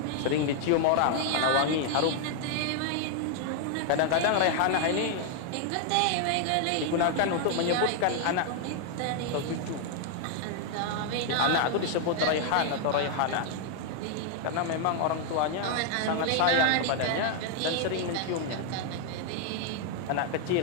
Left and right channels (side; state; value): both; different; correlation 0.00